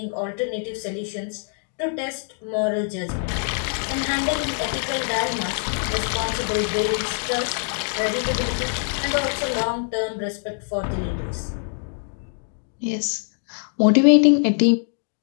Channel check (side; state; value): right; silent; 58 dB below the other